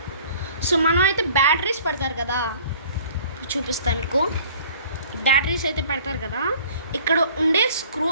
సో మనం అయితే బ్యాటరీస్ పెడతారు కదా, చూపిస్తాను మీకు. బ్యాటరీస్ అయితే పెడతారు కదా, ఇక్కడ ఉండే స్క్రూ,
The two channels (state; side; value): inverted; both; correlation -0.51